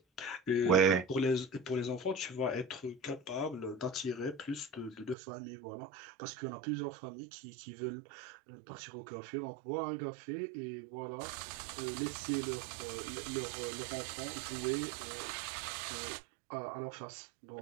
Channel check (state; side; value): drops out; left; at 5.2 s